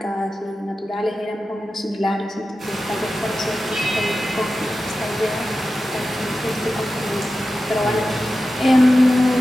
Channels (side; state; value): both; normal; correlation 0.93